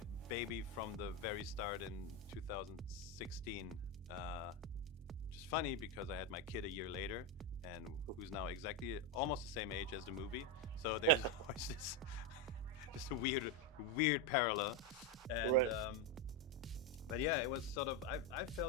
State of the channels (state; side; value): normal; both; correlation 0.09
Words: baby from the very start in 2016. Which is funny because I had my kid a year later, and who's now exactly almost the same age as the movie. So there's always this. Just a weird parallel, and Right. But yeah, it was sort of I